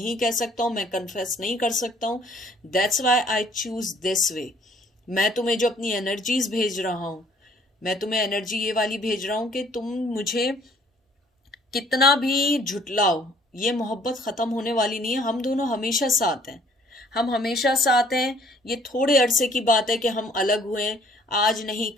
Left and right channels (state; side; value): normal; both; correlation 0.59